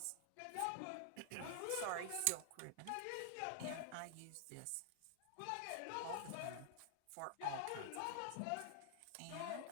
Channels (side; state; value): both; different; correlation -0.01